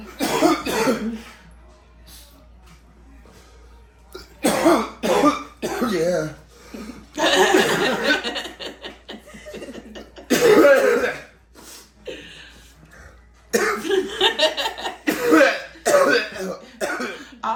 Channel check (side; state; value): both; identical; correlation 1.00